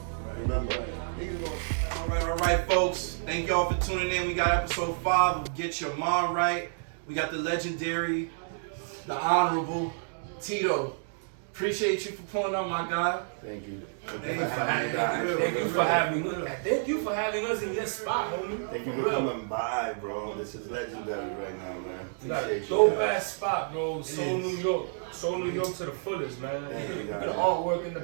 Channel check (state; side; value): silent; left; digital silence